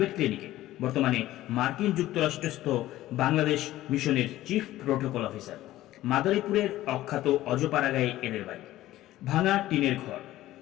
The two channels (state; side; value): quieter; right; 15.2 dB